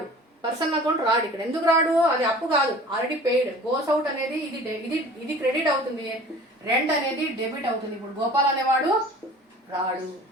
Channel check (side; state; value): both; normal; correlation 0.44